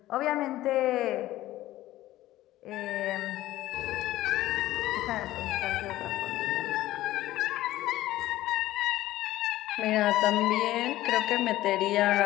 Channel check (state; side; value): quieter; right; 15.5 dB